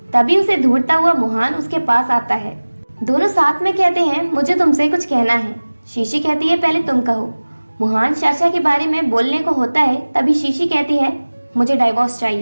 तभी उसे ढूंढता हुआ मुहान उसके पास आता है। दोनों साथ में कहते हैं, मुझे तुमसे कुछ कहना है। शीशी कहती है, पहले तुम कहो। मुहान साशा के बारे में बोलने को होता है, तभी शीशी कहती है, मुझे डाइवोर्स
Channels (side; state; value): both; inverted; correlation -1.00